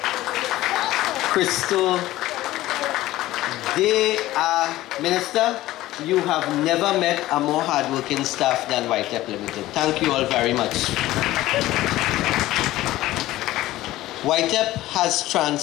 Crystal. They are, Minister, you have never met a more hardworking staff than YTEPP Limited. Thank you all very much. YTEPP has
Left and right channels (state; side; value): quieter; right; 16.1 dB